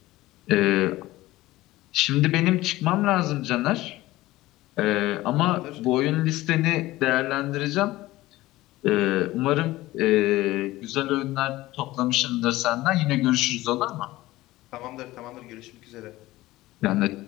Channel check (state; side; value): quieter; right; 17.7 dB